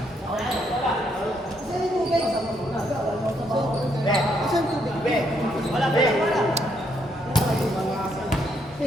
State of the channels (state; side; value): normal; both; correlation 0.74